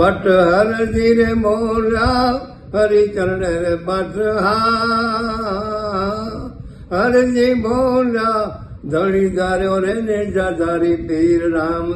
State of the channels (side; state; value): both; identical; correlation 1.00